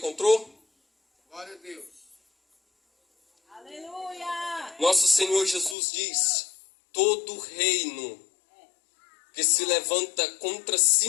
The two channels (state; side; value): drops out; right; at 5.8 s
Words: Glória a Deus. Nosso Senhor Jesus diz: todo reino que se levanta contra si